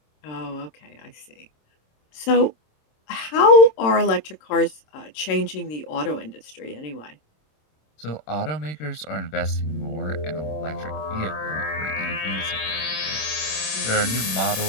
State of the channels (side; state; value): right; late; 26 ms